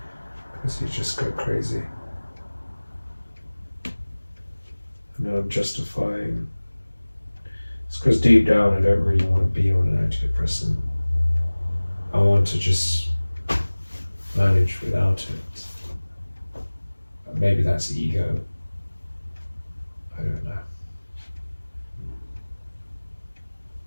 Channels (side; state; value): both; inverted; correlation -1.00